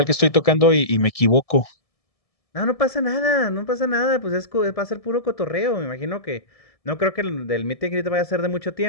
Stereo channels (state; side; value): late; right; 1.7 ms